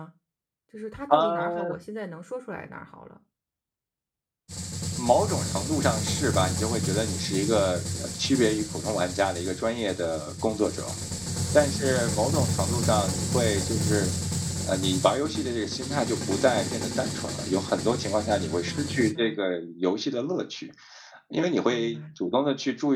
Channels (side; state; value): both; identical; correlation 1.00